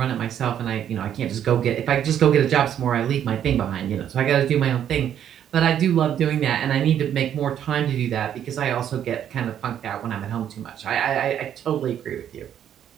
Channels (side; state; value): left; quieter; 9.8 dB